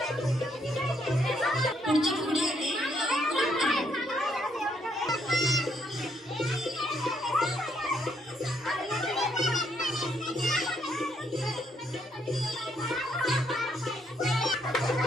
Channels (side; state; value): both; normal; correlation 0.73